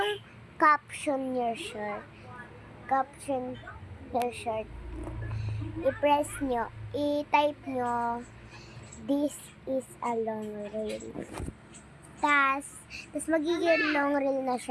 caption your shirt, i-press nyo, i-type nyo, this is a long reel. Tas magiging long reel na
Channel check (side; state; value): both; identical; correlation 1.00